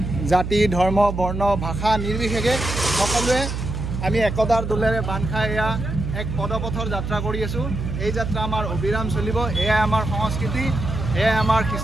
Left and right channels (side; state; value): right; noise; hum, 4 dB below the sound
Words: জাতি ধৰ্ম বৰ্ণ ভাষা নিৰ্বিশেষে সকলোৱে আমি একতাৰ দোলেৰে বান্ধ খাই এয়া এক পদপথৰ যাত্ৰা কৰি আছোঁ। এই যাত্ৰা আমাৰ অবিৰাম চলিব। এয়াই আমাৰ সংস্কৃতি, এয়াই আমাৰ